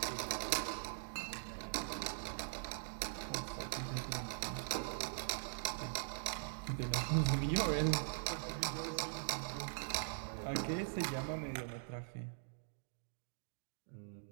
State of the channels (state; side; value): silent; left; digital silence